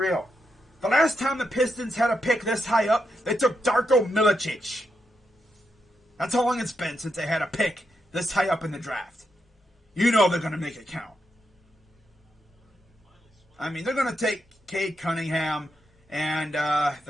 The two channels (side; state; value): both; normal; correlation 0.83